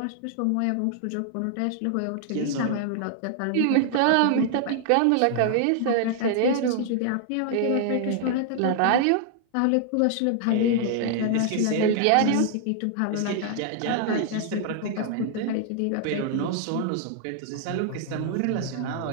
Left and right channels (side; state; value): both; different; correlation 0.00